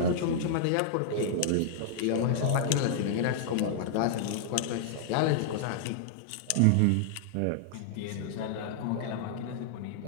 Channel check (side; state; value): both; different; correlation -0.02